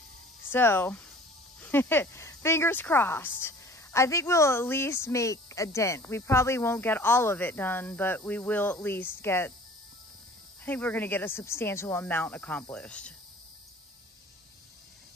So, fingers crossed. I think we'll at least make a dent. We probably won't get all of it done, but we will at least get, I think we're gonna get a substantial amount accomplished.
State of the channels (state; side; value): normal; both; correlation 0.48